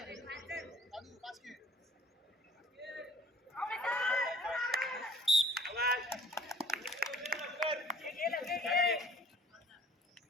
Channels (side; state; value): both; normal; correlation 0.51